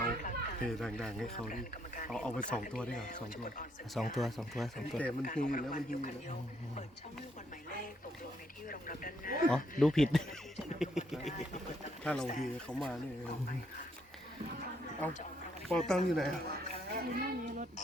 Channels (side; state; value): both; normal; correlation 0.72